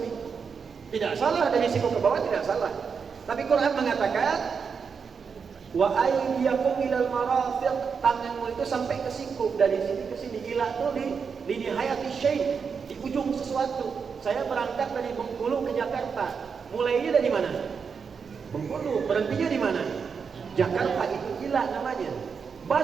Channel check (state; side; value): quieter; left; 5.9 dB